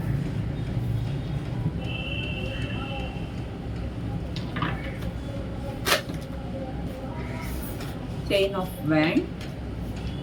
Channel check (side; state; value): both; identical; correlation 1.00